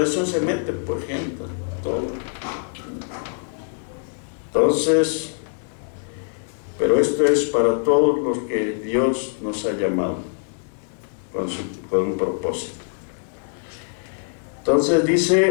se mete por gente, todo. Entonces, pero esto es para todos los que Dios nos ha llamado con un propósito. Entonces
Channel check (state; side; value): silent; right; 59 dB below the other